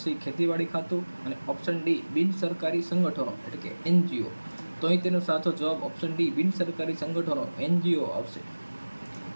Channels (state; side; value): inverted; both; correlation -1.00